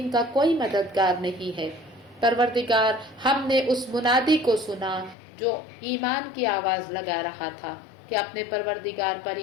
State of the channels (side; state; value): right; drops out; at 5.2 s